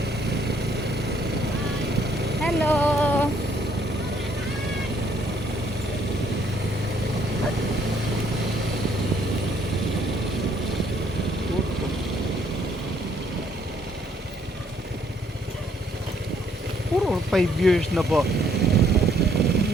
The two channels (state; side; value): normal; both; correlation 0.66